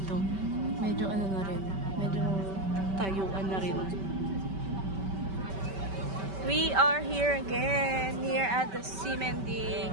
Medyo ano na rin. Medyo tayuan na rin. We are here again. Here at the Simending.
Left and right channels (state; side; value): late; left; 5.2 ms